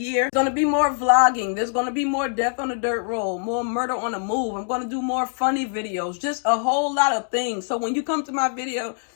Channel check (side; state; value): right; silent; 61 dB below the other